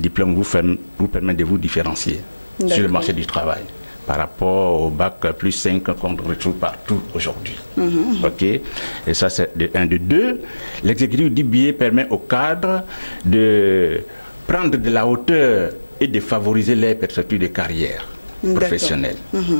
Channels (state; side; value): inverted; both; correlation -1.00